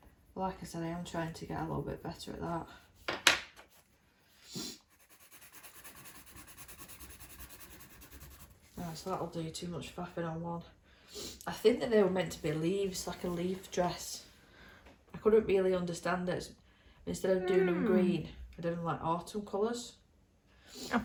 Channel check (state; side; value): identical; both; correlation 1.00